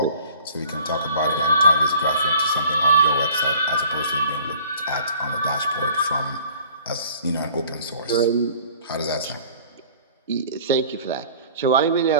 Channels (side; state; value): both; inverted; correlation -0.50